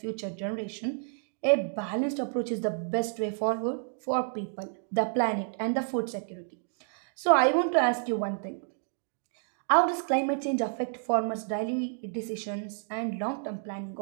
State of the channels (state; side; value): silent; left; digital silence